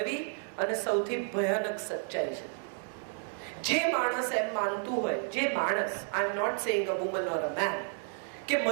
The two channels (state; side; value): silent; left; 56 dB below the other